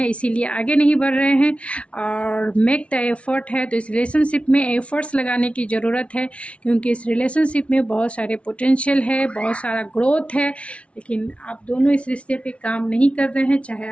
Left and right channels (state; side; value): late; right; 0.062 ms